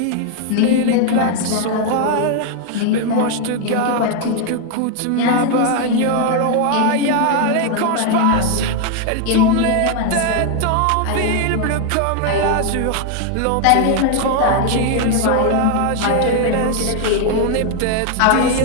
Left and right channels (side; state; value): both; different; correlation 0.01